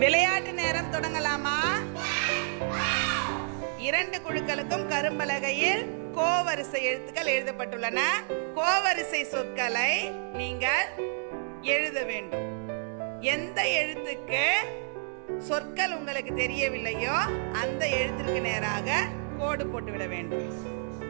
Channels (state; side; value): silent; left; digital silence